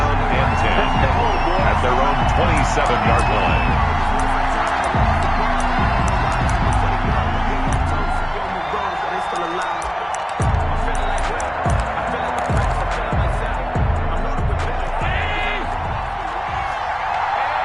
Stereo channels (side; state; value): both; identical; correlation 1.00